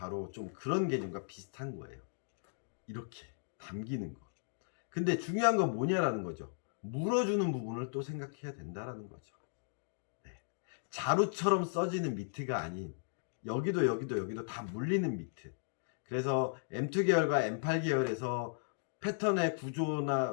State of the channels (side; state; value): right; silent; digital silence